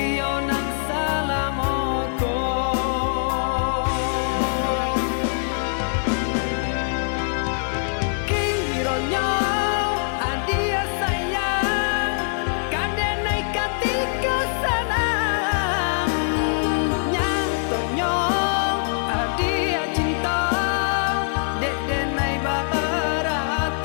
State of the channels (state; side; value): silent; right; digital silence